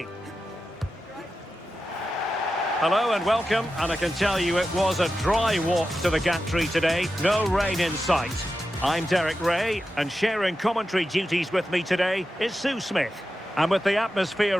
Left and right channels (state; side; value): normal; both; correlation 0.91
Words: Hello and welcome, and I can tell you it was a dry walk to the gantry today, no rain in sight. I'm Derek Ray, and sharing commentary duties with me today is Sue Smith. And with the